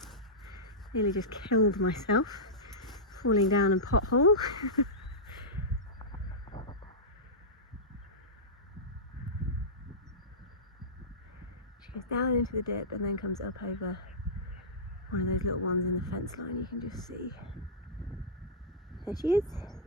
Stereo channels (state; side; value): normal; both; correlation -0.14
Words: Nearly just killed myself falling down a pothole. She goes down into the dip and then comes up over one of those little ones in the fence line. You can just see. There she is.